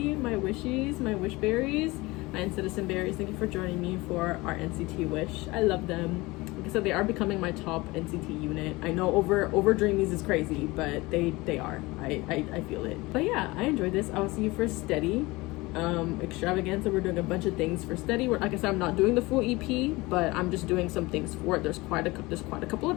My wishies, my wish berries, my citizen berries. Thank you for joining me for our NCT wish. I love them. Like I said, they are becoming my top NCT unit. I know over Dreamies is crazy, but they are. I feel it. But yeah, I enjoyed this. I will see you for Steady. Extravaganza, we're doing a bunch of things for Steady. Like I said, I'm not doing the full EP, but I'm just doing some things for it. There's quite a couple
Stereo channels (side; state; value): right; quieter; 22.0 dB